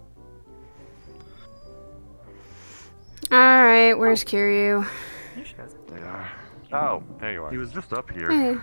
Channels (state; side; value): inverted; both; correlation -1.00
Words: Alright, where's Kiryu? Oh, there you are. He was just up here. Hey.